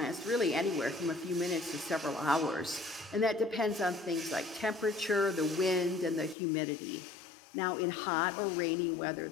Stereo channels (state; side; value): drops out; right; at 6.4 s